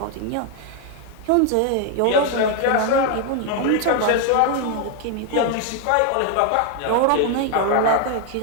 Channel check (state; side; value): different; both; correlation 0.01